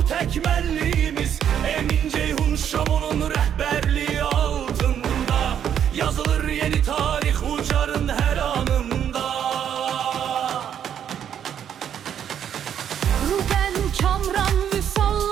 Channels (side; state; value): left; quieter; 9.2 dB